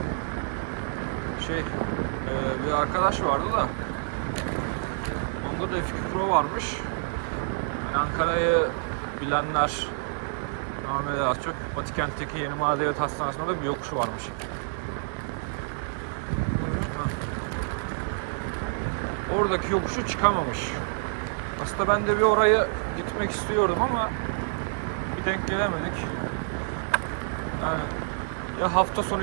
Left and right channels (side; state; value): left; silent; digital silence